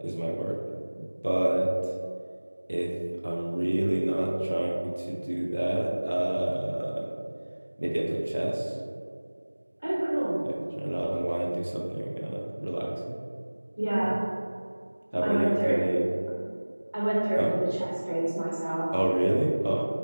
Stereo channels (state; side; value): inverted; both; correlation -1.00